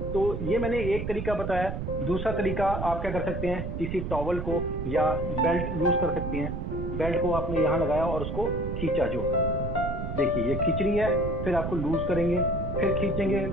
तो ये मैंने एक तरीका बताया। दूसरा तरीका आप क्या कर सकते हैं, किसी टॉवल को या बेल्ट यूज कर सकते हैं। बेल्ट को आपने यहाँ लगाया और उसको खींचा, जो देखिए ये खींच रही है, फिर आपको लूज करेंगे, फिर खींचेंगे,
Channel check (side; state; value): right; noise; rumble, 4 dB below the sound